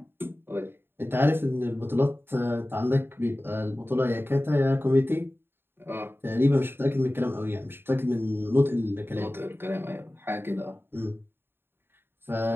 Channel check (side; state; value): left; late; 0.11 ms